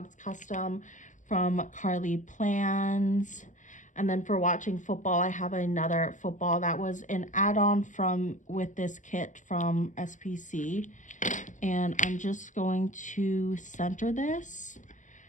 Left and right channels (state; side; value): late; right; 0.36 ms